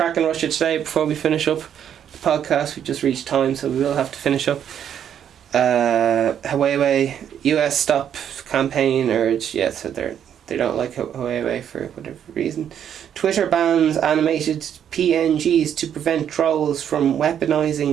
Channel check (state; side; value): quieter; left; 9.2 dB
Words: in Russia today before we finish up the podcast? We just reached time, so we will have to finish up. Huawei, US stop campaign urge. Yeah, so they don't like Huawei for whatever reason. Twitter bans animated PNGs to prevent trolls from